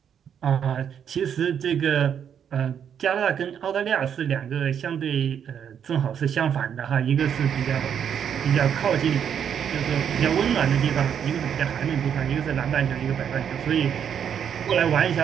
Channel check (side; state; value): left; quieter; 8.3 dB